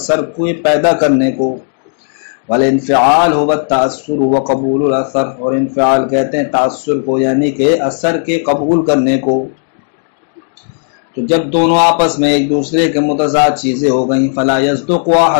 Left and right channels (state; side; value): silent; right; digital silence